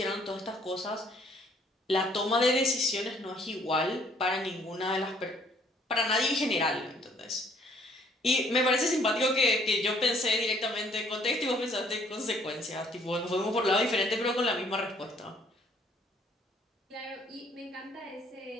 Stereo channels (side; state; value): both; normal; correlation 0.62